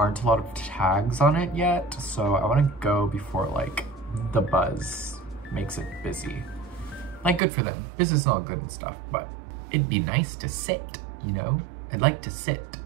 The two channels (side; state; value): left; drops out; at 7.4 s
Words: a lot of tags on it yet. So I want to go before like the buzz makes it busy. Like, good for them. Business is all good and stuff, but it'd be nice to sit, you know? I'd like to sit.